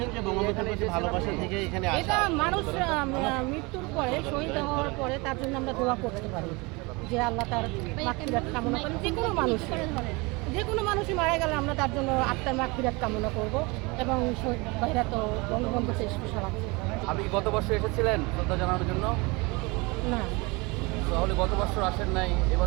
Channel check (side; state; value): left; quieter; 26.2 dB